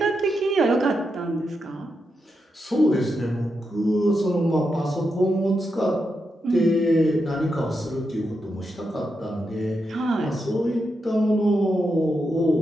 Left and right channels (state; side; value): normal; both; correlation 0.85